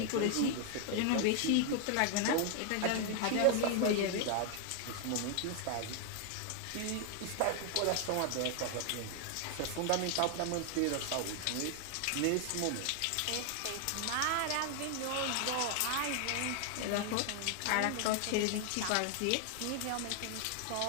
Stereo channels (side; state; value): both; different; correlation 0.00